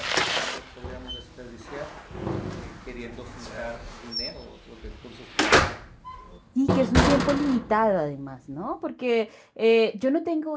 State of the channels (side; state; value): both; identical; correlation 1.00